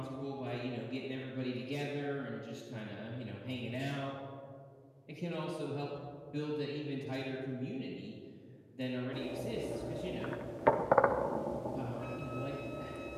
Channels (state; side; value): identical; both; correlation 1.00